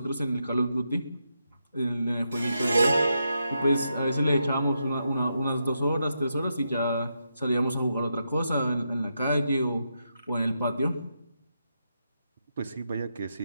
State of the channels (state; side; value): inverted; both; correlation -0.84